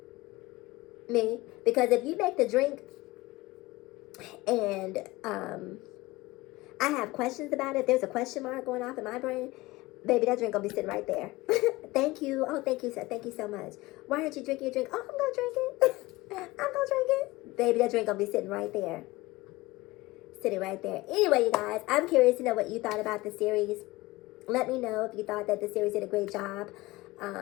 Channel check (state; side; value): quieter; right; 20.4 dB